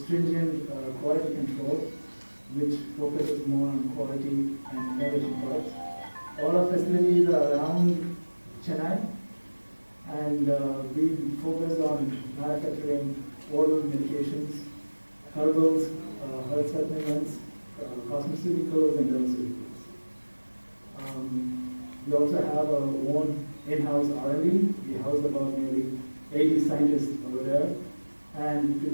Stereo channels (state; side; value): inverted; both; correlation -1.00